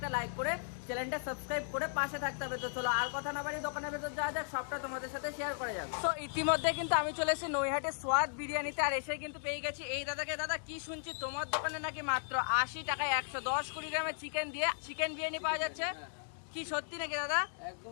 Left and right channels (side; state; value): right; silent; digital silence